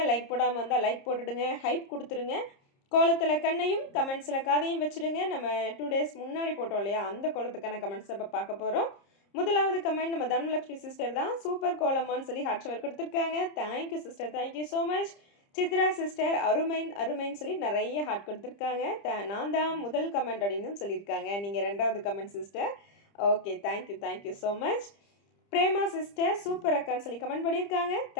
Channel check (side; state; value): right; late; 30 ms